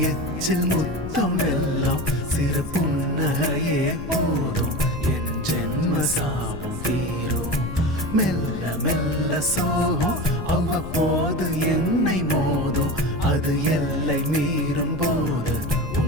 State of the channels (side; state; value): left; noise; rumble, 10 dB below the sound